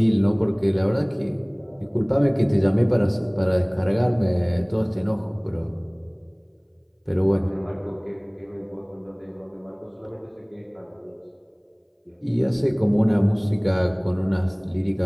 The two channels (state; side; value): identical; both; correlation 1.00